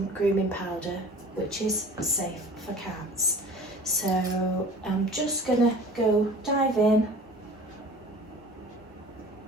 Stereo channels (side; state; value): both; normal; correlation 0.43